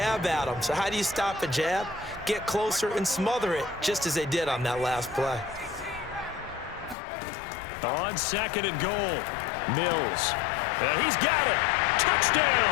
at him. So how do you stop a jab? Get closer and smother it, just as they did on that last play. On 2nd and goal, Mills. And he's got it.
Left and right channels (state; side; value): drops out; right; at 7.0 s